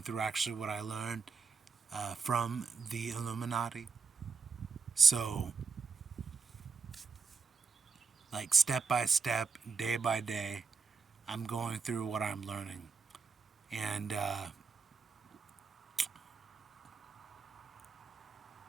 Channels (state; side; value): quieter; left; 5.1 dB